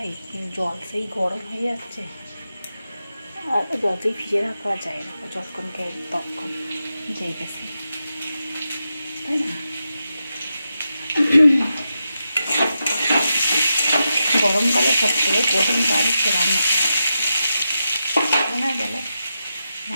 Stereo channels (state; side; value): inverted; both; correlation -0.88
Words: জল সেই গরম হয়ে যাচ্ছে, আর যতই ভিজে রাখা যায় না, যতক্ষণ খাই ততক্ষণ যেই গেছে, তাই না? গরমকালে সবথেকে কঠিন কাজ হচ্ছে রান্না করা। মনে গেলে